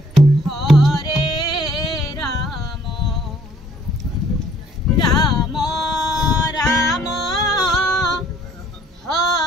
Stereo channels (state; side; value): normal; both; correlation 0.61